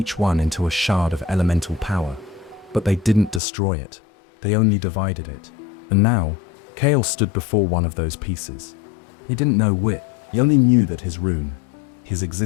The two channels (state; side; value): drops out; right; at 3.4 s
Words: one into a shard of elemental power. But they didn't destroy it. They only divided it. And now, Kale stood before one of those pieces. He didn't know which. He only knew that his rune, his